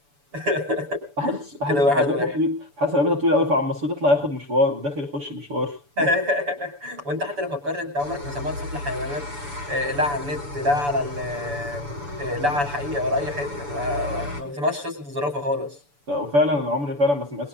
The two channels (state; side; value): late; left; 7.0 ms